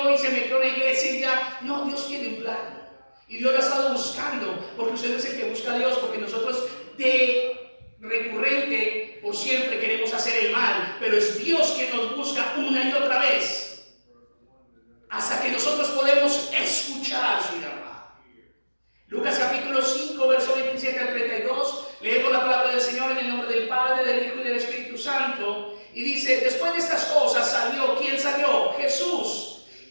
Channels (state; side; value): inverted; both; correlation -1.00